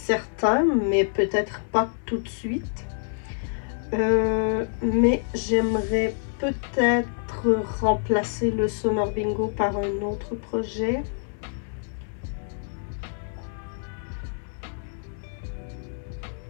mais peut-être pas tout de suite. Mais j'aimerais peut-être remplacer le Summer Bingo par un autre projet.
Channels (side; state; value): right; silent; digital silence